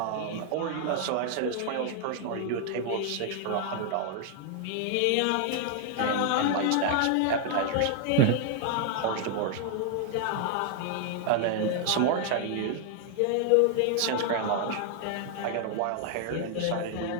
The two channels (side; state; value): both; different; correlation 0.00